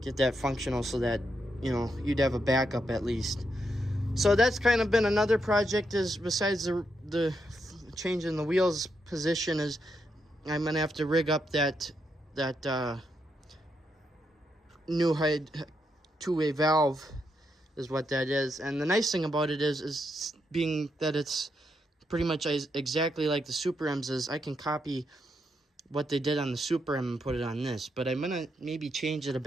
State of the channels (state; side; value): normal; both; correlation 0.81